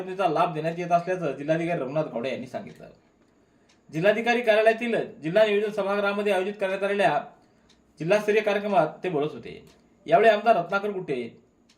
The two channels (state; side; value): identical; both; correlation 1.00